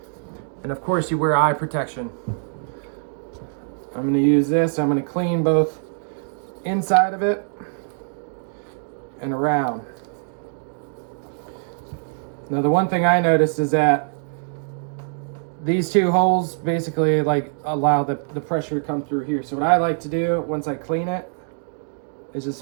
and of course you wear eye protection. I'm going to use this. I'm going to clean both inside of it and around. Now the one thing I noticed is that these two holes basically like allow the pressure to come through here. So what I like to do once I clean it is just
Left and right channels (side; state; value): left; silent; 63 dB below the other